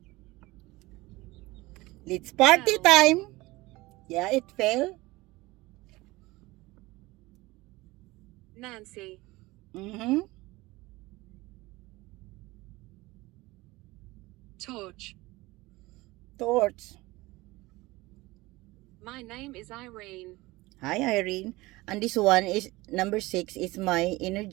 Let's party Fell. time. Yeah, it fell. Nancy. Mm-hmm. Torch. Torch. My name is Irene. Hi, Irene. And this one is number 6 is my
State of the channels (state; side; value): quieter; left; 20.6 dB